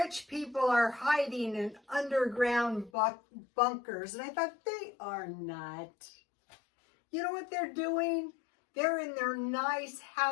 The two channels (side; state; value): right; drops out; at 2.9 s